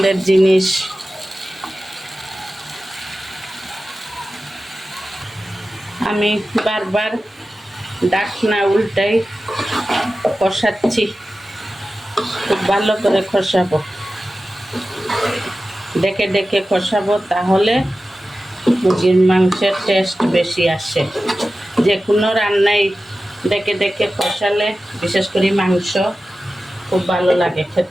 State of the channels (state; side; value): normal; both; correlation 0.94